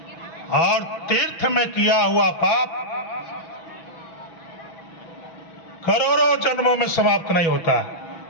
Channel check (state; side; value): late; right; 6.1 ms